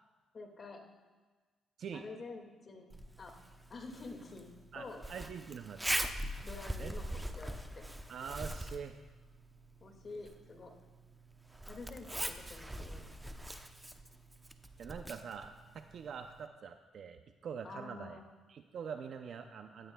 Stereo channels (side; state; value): both; normal; correlation 0.88